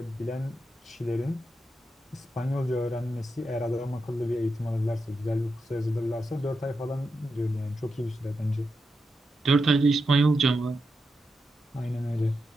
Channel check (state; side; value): normal; both; correlation 0.87